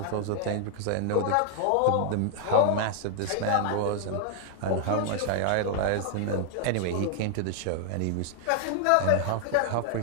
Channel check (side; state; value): both; different; correlation -0.01